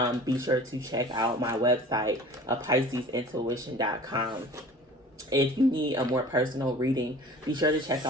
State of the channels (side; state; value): both; normal; correlation 0.43